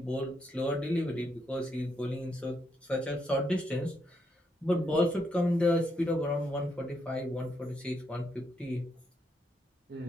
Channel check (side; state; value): both; normal; correlation 0.78